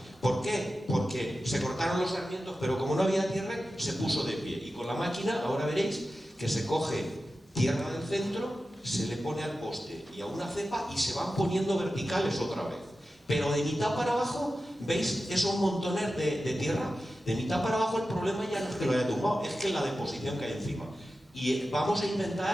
¿Por qué? Porque se cortaron los sarmientos, pero como no había tierra, se puso de pie. Y con la máquina, ahora veréis que se coge tierra del centro, se le pone al poste y a una cepa y se van poniendo verticales otra vez. Pero de mitad para abajo, ¿veis esos montones de tierra? De mitad para abajo el problema ya no es que lo haya tumbado, es que la deposición que hay encima. Y vamos a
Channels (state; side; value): normal; both; correlation 0.93